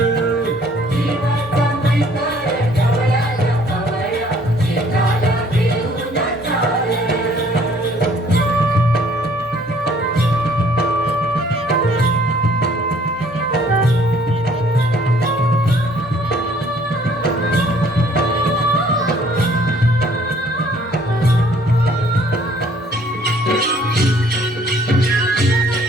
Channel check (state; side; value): normal; both; correlation 0.59